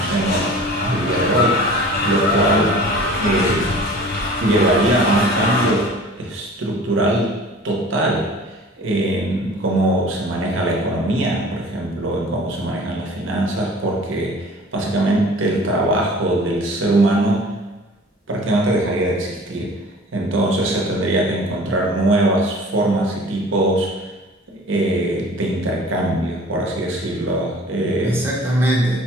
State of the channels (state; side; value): normal; both; correlation 0.45